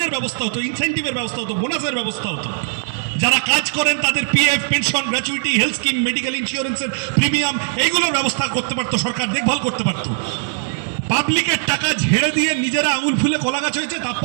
ব্যবস্থা হতো, ইনসেন্টিভের ব্যবস্থা হতো, বোনাসের ব্যবস্থা হতো। যারা কাজ করেন তাদের PF, pension, gratuity, health scheme, medical ইন্স্যুরেন্সের প্রিমিয়াম, এইগুলোর ব্যবস্থা করতে পারতো সরকার, দেখভাল করতে পারতো। পাবলিকের টাকা ঝেড়ে দিয়ে নিজেরা আঙুল ফুলে কলা গাছ হয়েছে,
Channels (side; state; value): left; silent; digital silence